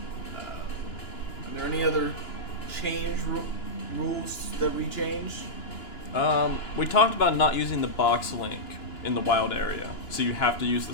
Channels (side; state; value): right; late; 2.9 ms